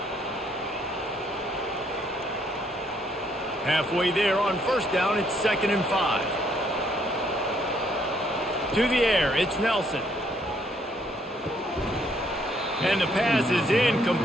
Halfway there on first down, it's 2nd and 5. To the air, it's Nelson. And the pass is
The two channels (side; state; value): both; normal; correlation 0.69